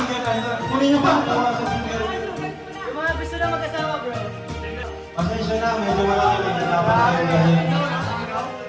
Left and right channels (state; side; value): identical; both; correlation 1.00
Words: na ito. Kunin niyo pa. Tawa sa singer. Yung mga gusto na mag-asawa, bro. Pasensya na. Medyo malaki. Dapat kayo gawin.